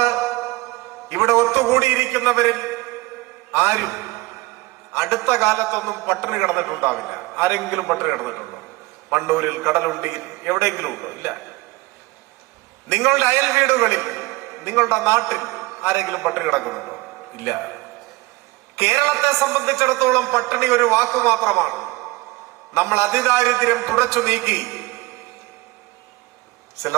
ഇവിടെ ഒത്തുകൂടിയിരിക്കുന്നവരിൽ ആരും അടുത്ത കാലത്തൊന്നും പട്ടിണി കിടന്നിട്ടുണ്ടാവില്ല. ആരെങ്കിലും പട്ടിണി കിടന്നിട്ടുണ്ടോ? മണ്ണൂരിൽ, കടലുണ്ടിയിൽ, എവിടെയെങ്കിലും ഉണ്ടോ? ഇല്ല. നിങ്ങളുടെ അയൽ വീടുകളിൽ, നിങ്ങളുടെ നാട്ടിൽ ആരെങ്കിലും പട്ടിണി കിടക്കുന്നുണ്ടോ? ഇല്ല. കേരളത്തെ സംബന്ധിച്ചിടത്തോളം പട്ടിണി ഒരു വാക്കു മാത്രമാണ്. നമ്മൾ അതിദാരിദ്ര്യം തുടച്ചു നീക്കി.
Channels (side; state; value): left; quieter; 21.3 dB